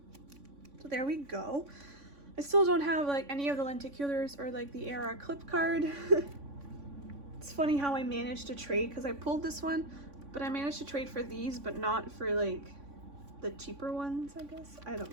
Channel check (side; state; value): left; late; 3.5 ms